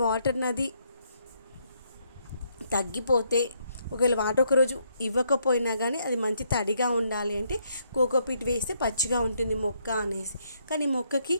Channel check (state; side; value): inverted; both; correlation -0.73